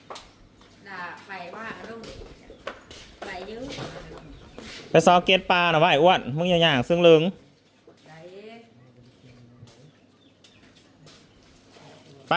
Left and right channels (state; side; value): identical; both; correlation 1.00